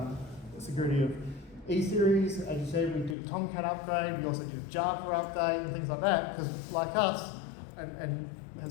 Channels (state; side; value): drops out; right; at 3.2 s